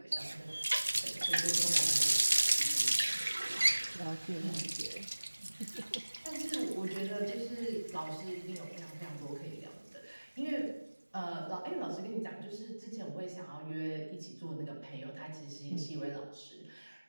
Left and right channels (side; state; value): both; inverted; correlation -1.00